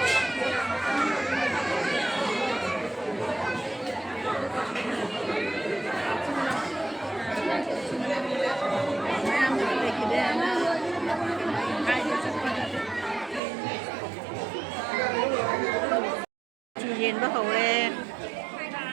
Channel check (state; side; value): drops out; left; at 13.4 s